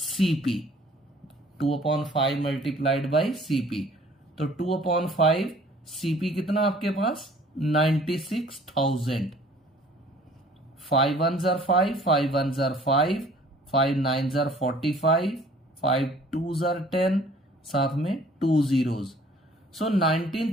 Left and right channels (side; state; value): both; normal; correlation 0.54